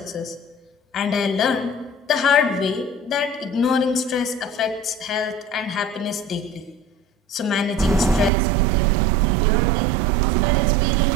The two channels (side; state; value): left; drops out; at 8.3 s